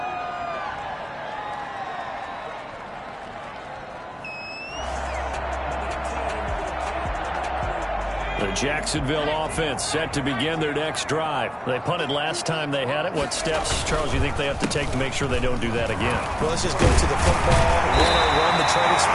The Jacksonville offense set to begin their next drive. They punted last time they had it. What steps, Charles, do you think they have to take to make sure they don't do that again? Well, let's just go to the football 101, the trade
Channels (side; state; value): both; identical; correlation 1.00